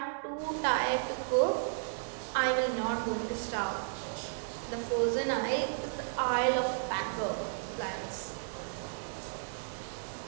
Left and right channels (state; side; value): silent; left; 55 dB below the other